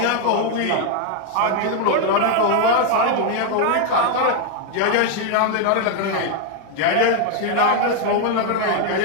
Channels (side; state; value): both; different; correlation 0.00